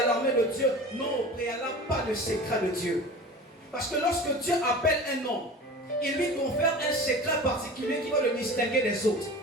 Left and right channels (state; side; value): normal; both; correlation 0.36